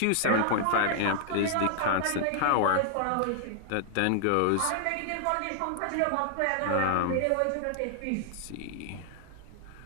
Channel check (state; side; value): different; both; correlation 0.00